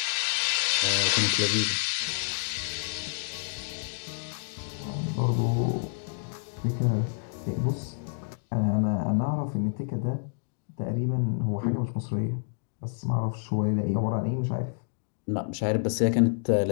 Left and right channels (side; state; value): right; silent; digital silence